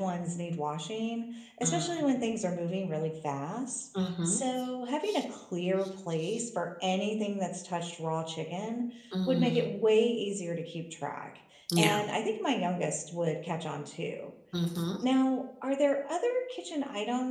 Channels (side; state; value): both; identical; correlation 1.00